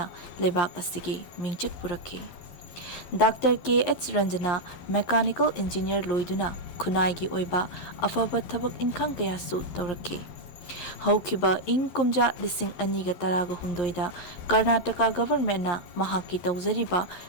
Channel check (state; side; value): late; right; 11 ms